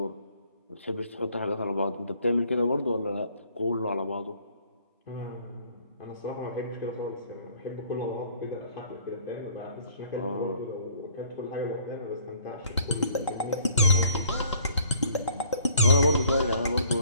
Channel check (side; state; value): both; inverted; correlation -0.58